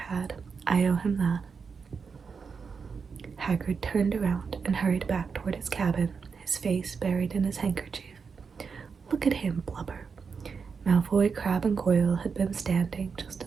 had. I owe him that. Hagrid turned around and hurried back toward his cabin, his face buried in his handkerchief. Look at him, blubber. Malfoy, Crabbe, and Goyle had been standing just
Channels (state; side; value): quieter; left; 5.6 dB